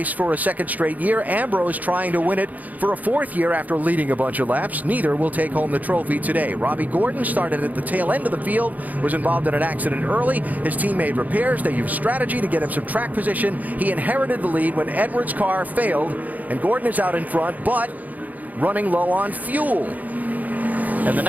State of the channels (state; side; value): late; left; 0.079 ms